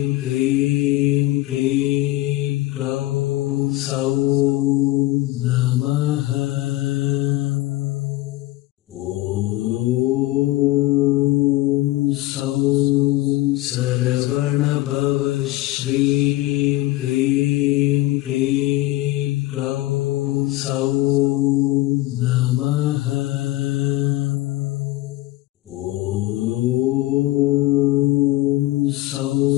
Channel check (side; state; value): right; quieter; 17.1 dB